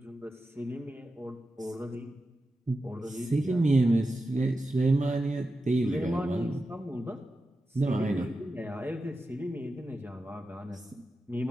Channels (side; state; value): both; normal; correlation 0.91